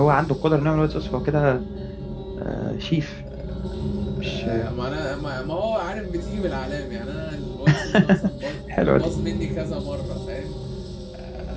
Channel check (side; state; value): both; identical; correlation 1.00